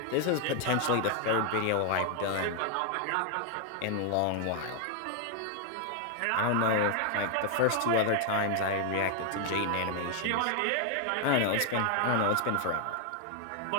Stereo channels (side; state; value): both; different; correlation 0.00